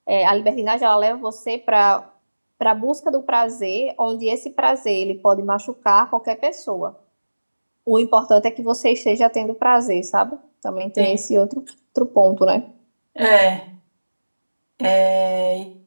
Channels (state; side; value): inverted; both; correlation -1.00